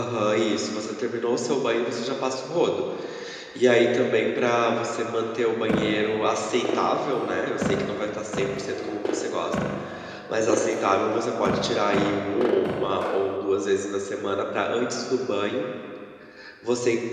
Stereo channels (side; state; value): both; identical; correlation 1.00